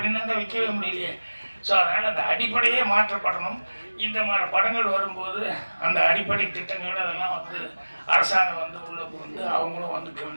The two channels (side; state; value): both; inverted; correlation -1.00